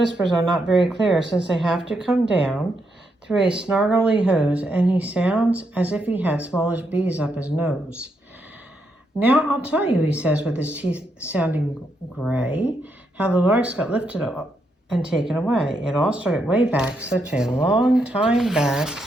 are not very clear, since they have to come down through a snargly hose, and he sounds as if he had smallish bees up his nose. Now I'll tell you, he says with his teeth sounding gray, how the Lorax got lifted up and taken away. It all started way back, such a long time back.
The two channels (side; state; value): both; normal; correlation 0.80